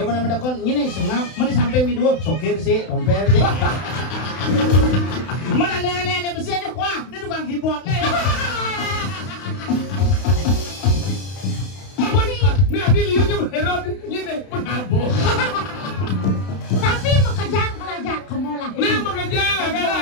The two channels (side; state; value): right; late; 32 ms